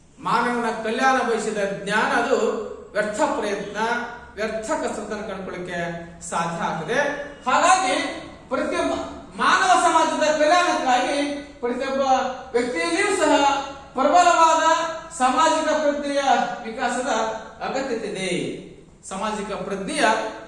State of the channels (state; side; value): identical; both; correlation 1.00